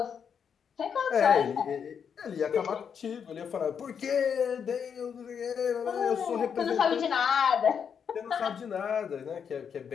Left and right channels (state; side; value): quieter; right; 7.2 dB